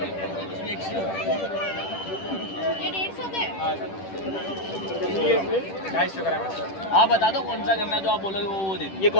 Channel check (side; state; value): right; late; 10 ms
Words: ये 150 के 250 ग्राम है। आप बता दो कौन सा करना है, जो आप बोलोगे वो दे दो। ये